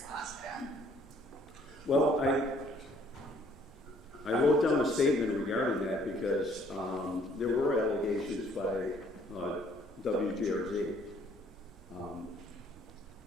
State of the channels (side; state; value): right; noise; hum, 26 dB below the sound